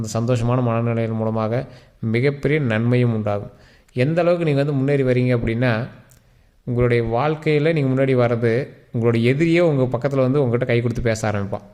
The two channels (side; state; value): both; identical; correlation 1.00